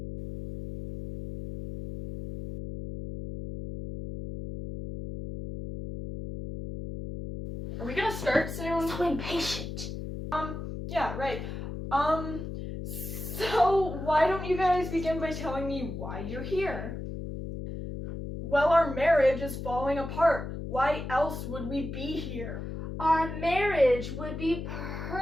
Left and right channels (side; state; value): left; noise; hum, 7 dB below the sound